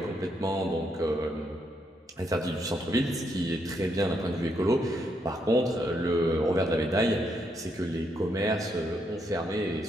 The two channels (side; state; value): both; normal; correlation 0.77